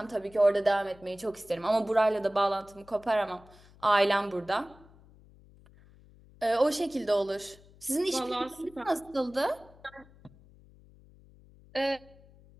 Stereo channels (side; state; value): left; noise; hum, 25 dB below the sound